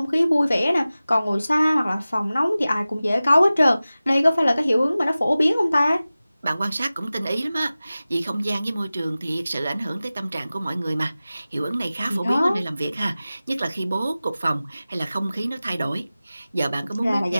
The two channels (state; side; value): inverted; both; correlation -0.97